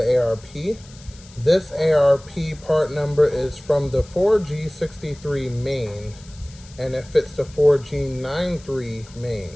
ARP. This ARP part number is from the 4G63 main, and it fits the 4G93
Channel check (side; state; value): left; noise; hiss, 23 dB below the sound